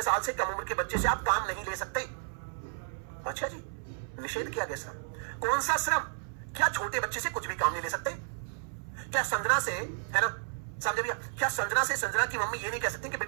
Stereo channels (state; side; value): silent; left; 56 dB below the other